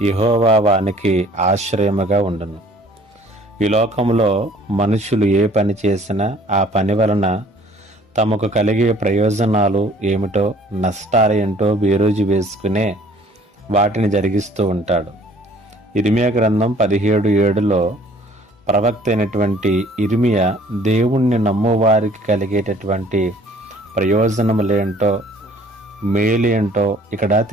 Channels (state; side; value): normal; both; correlation 0.55